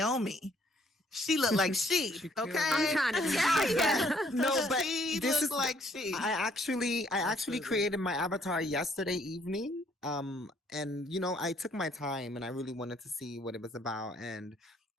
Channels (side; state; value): both; normal; correlation 0.65